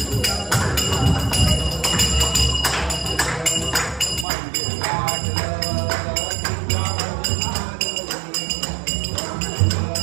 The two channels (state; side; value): drops out; left; at 4.2 s